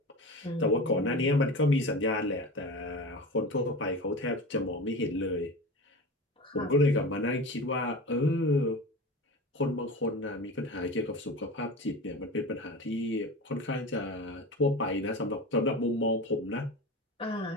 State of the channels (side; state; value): both; normal; correlation 0.31